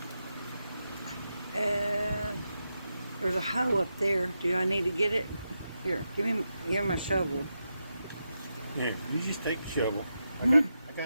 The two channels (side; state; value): both; inverted; correlation -0.87